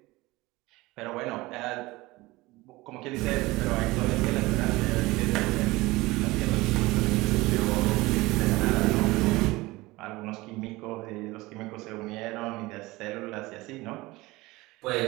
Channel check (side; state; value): left; quieter; 20.7 dB